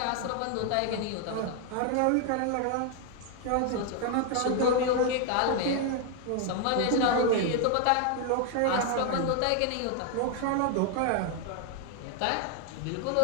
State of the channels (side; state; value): both; different; correlation 0.00